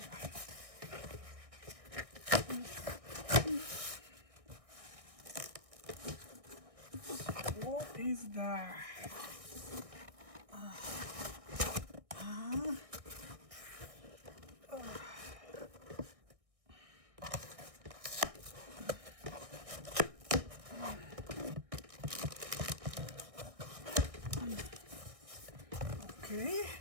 What is that? Okay.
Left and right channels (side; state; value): left; late; 1.6 ms